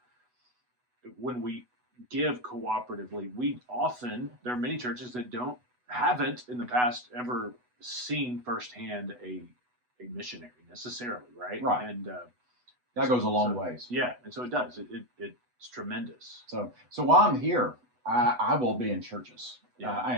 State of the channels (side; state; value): left; late; 8.1 ms